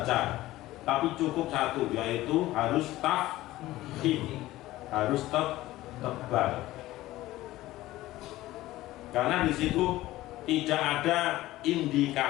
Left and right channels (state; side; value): quieter; right; 16.6 dB